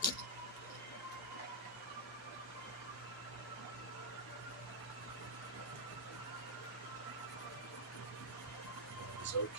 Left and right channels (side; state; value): both; normal; correlation -0.08